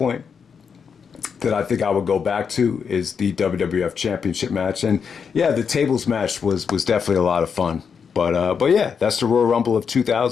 that I think I would go back to is the WWF Championship match, and yeah, the tables match was definitely a lot of fun. But yeah, that's the Royal Rumble of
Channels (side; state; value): right; quieter; 6.5 dB